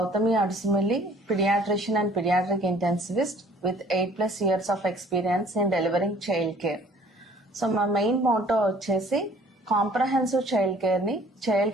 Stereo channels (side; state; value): both; normal; correlation 0.55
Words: Adusumilli, pediatrician and pediatric intensivist with 8+ years of experience in delivering child care. So మా main motto వచ్చేసి comprehensive child care ని